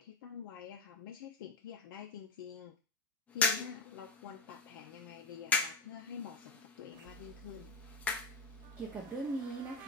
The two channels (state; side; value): quieter; right; 3.5 dB